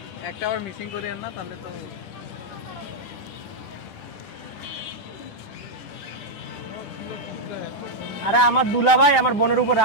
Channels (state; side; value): late; right; 10 ms